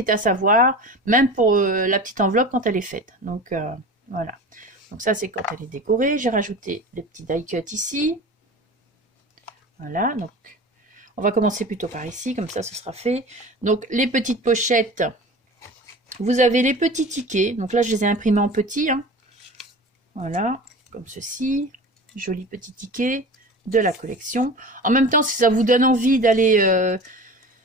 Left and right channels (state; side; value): normal; both; correlation 0.36